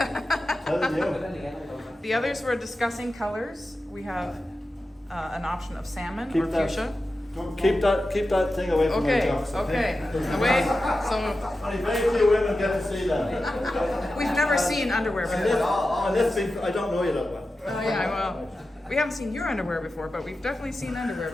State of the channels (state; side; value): normal; both; correlation 0.92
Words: telling you. The others were discussing colors. We have an option of salmon Keep or that. fuchsia. Keep that thing away from my Okay. jocks. Okay. Away. So Only very few women get to see them. we've never seen underwear before. I don't know you that well. Oh yeah. Well, we haven't seen your underwear before, but we've definitely seen underwear